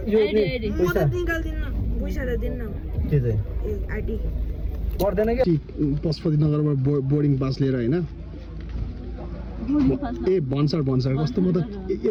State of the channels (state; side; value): identical; both; correlation 1.00